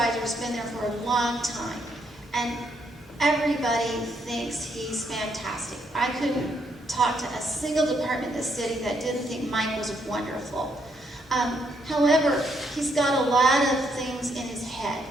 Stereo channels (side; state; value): both; normal; correlation 0.74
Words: has been there for a long time, and everybody thinks he's fantastic. I couldn't talk to a single department in the city that didn't think Mike was wonderful. However, he's got a lot of things in his head,